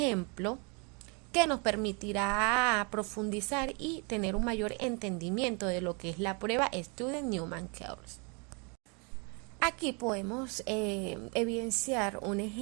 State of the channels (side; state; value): left; quieter; 34.0 dB